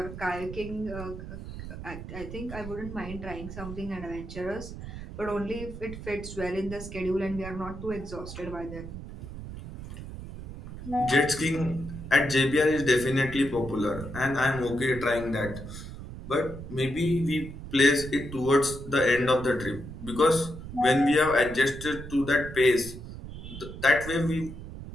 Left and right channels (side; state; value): right; noise; rumble, 11 dB below the sound